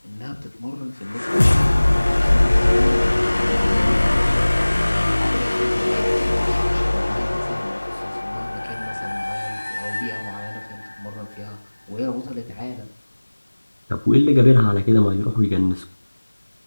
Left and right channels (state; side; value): inverted; both; correlation -1.00